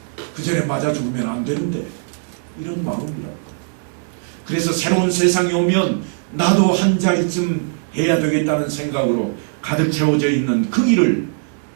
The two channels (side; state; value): left; silent; 66 dB below the other